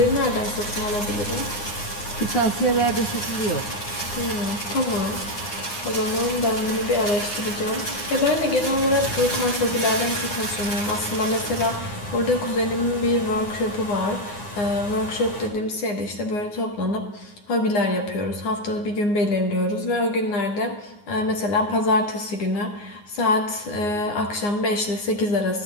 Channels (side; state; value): right; late; 9.7 ms